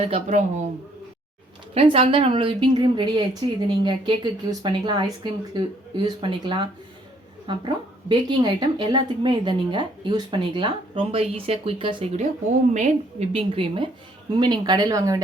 ஃப்ரெண்ட்ஸ் அதுதான் நம்மளோட விப்பிங் க்ரீம் ரெடி ஆகிடுச்சு. இது நீங்கள் கேக்குக்கு யூஸ் பண்ணிக்கலாம், ஐஸ்கிரீமுக்கு யூஸ் பண்ணிக்கலாம், அப்புறம் பேக்கிங் ஐட்டம் எல்லாத்துக்குமே இதை நீங்கள் யூஸ் பண்ணிக்கலாம். ரொம்ப ஈஸியாக குயிக்காக செய்யக்கூடிய ஹோம்மேட் விப்பிங் க்ரீமு. இனிமேல் நீங்கள் கடையில் வாங்க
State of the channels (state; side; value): normal; both; correlation 0.65